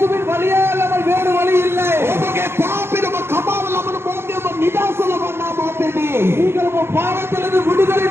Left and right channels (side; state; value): left; late; 0.12 ms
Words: வழியே அல்லாமல் வேறு வழி இல்லை. ඔබගේ පාපෙම කපාව ලබන මොහොතේ ඔබ නිදහස ලබන්නා මොහොතේදී நீங்கள் உங்க பாவத்திலிருந்து விடுதலை